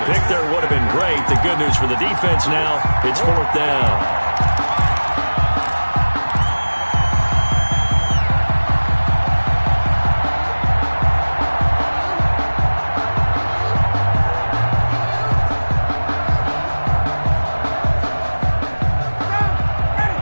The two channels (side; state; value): both; inverted; correlation -1.00